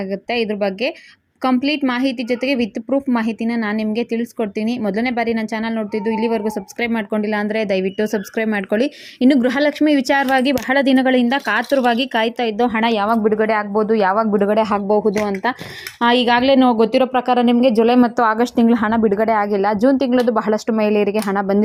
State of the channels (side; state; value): both; identical; correlation 1.00